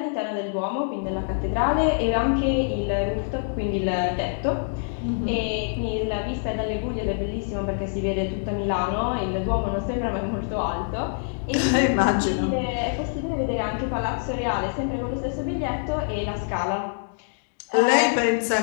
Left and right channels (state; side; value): silent; right; digital silence